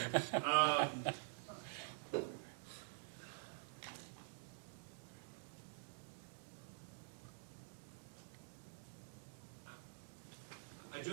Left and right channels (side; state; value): left; silent; digital silence